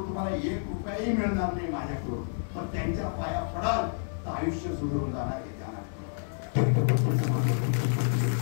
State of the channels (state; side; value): silent; right; digital silence